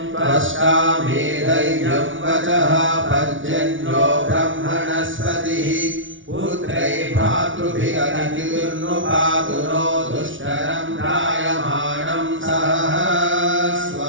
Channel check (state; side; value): late; left; 0.56 ms